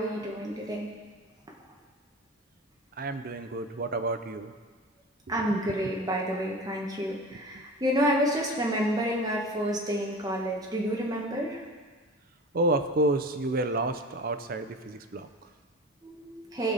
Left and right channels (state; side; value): normal; both; correlation 0.36